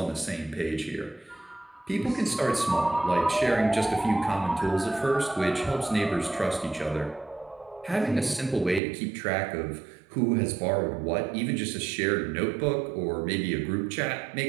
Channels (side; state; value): left; drops out; at 8.8 s